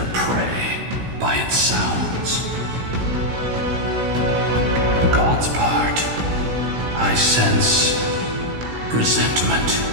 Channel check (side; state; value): left; late; 17 ms